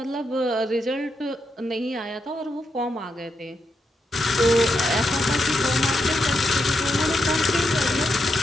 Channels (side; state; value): both; normal; correlation 0.83